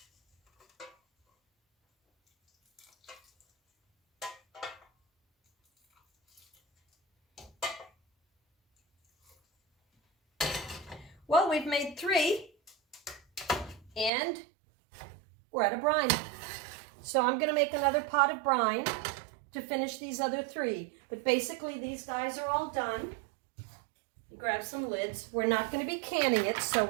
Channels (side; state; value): left; drops out; at 14.1 s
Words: Well, we've made 3, and we're at a brine. So I'm going to make another pot of brine to finish these other 3. But basically these guys are all done. You grab some lids. We're not going to be canning it, so